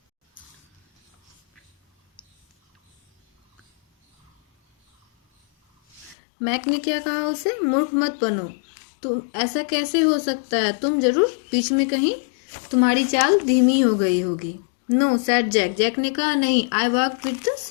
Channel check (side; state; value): right; drops out; at 6.2 s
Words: मैक ने क्या कहा उसे, मूर्ख मत बनो, तुम ऐसा कैसे हो सकता है, तुम जरूर बीच में कहीं तुम्हारी चाल धीमी हो गई होगी। No sad Jack. जैक ने कहा नहीं, I walk with the